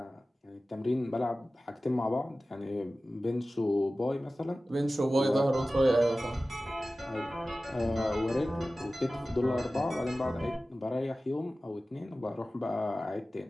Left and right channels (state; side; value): normal; both; correlation 0.96